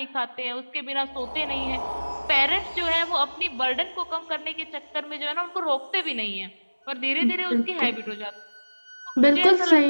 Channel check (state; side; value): inverted; both; correlation -1.00